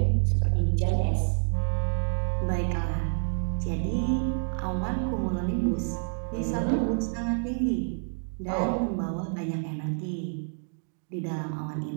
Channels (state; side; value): silent; left; 59 dB below the other